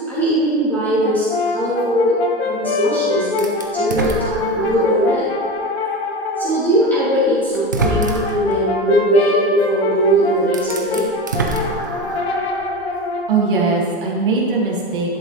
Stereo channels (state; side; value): normal; both; correlation 0.26